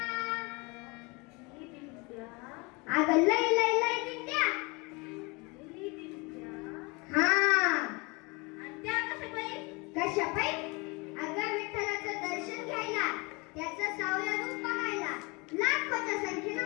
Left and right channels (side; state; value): right; quieter; 27.7 dB